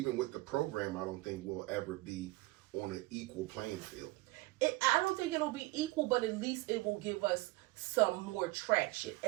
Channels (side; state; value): left; quieter; 21.5 dB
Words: with the program, I don't think we'll ever be on an equal playing field. I don't think it'll be equal, but at least it will give us some more traction.